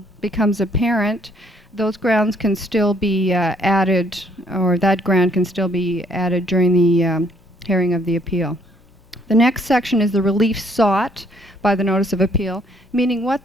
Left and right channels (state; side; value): normal; both; correlation 0.66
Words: becomes apparent, those grounds can still be added, or that ground can still be added during the hearing of the appeal. The next section is the relief sought by the notice of appeal, meaning